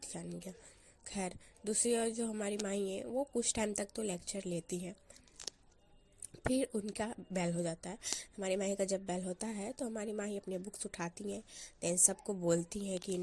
जानेंगे। खैर, दूसरी ओर जो हमारी माई है वो कुछ टाइम तक तो लेक्चर लेती है, फिर उनका बेल हो जाता है। हमारी माही का जब बेल होता है तो हमारी माही अपनी बुक्स उठाती हैं, देन सबको बोलती हैं कि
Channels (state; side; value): identical; both; correlation 1.00